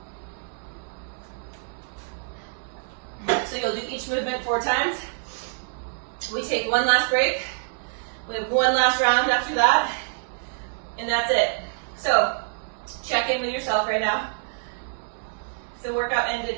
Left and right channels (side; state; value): left; silent; digital silence